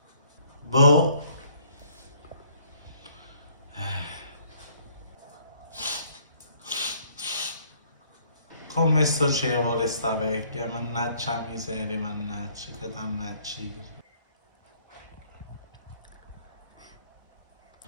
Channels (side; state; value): both; inverted; correlation -0.62